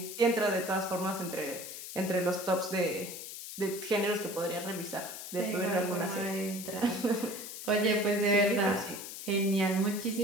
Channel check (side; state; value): left; noise; hiss, 10 dB below the sound